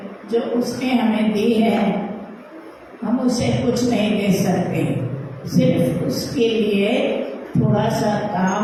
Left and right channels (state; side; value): identical; both; correlation 1.00